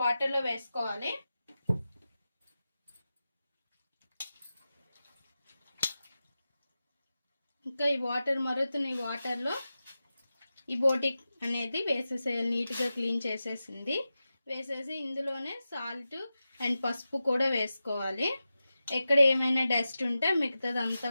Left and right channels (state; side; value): inverted; both; correlation -0.93